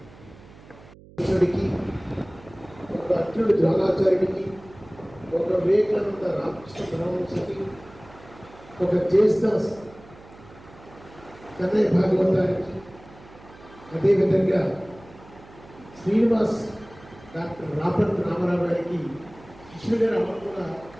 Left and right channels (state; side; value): noise; right; hum, 22 dB below the sound